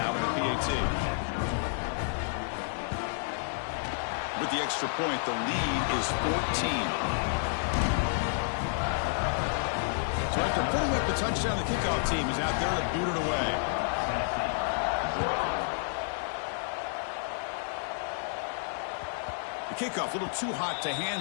with the PAT. With the extra point, the lead is 14. So after putting up the touchdown, the kickoff team is out there to boot it away. The kickoff, a little too hot to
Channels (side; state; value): right; silent; 58 dB below the other